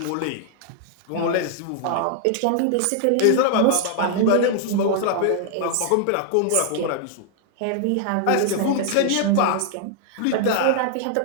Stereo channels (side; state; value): both; different; correlation 0.00